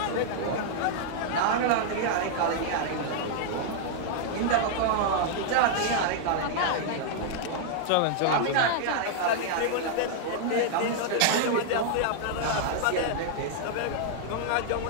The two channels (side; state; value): both; different; correlation -0.01